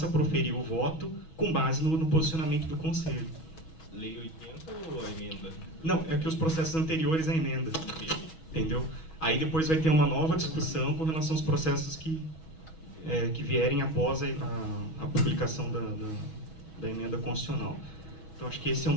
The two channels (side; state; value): right; late; 6.2 ms